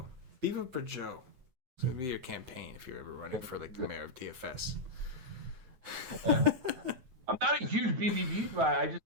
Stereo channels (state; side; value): late; left; 9.2 ms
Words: Beavitt for Joe. It's going to be your campaign if you're ever running for like the mayor of DFS. I'm not a huge BBB guy. I